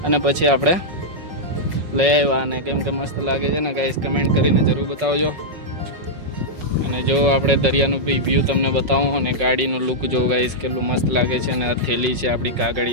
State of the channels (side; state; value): left; late; 5.4 ms